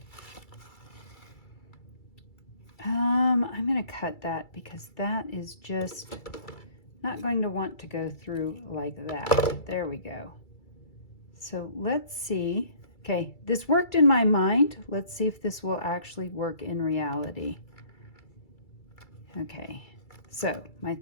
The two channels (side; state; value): right; late; 2.3 ms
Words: I'm going to cut that because that is just not going to want to go through like that. There we go. So let's see. Okay, this worked in my mind. Let's see if this will actually work in reality. Okay. So my